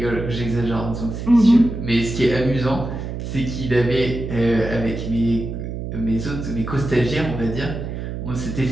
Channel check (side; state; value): right; noise; hum, 6 dB below the sound